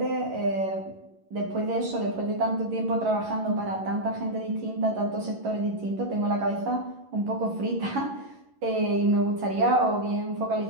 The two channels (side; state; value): left; late; 11 ms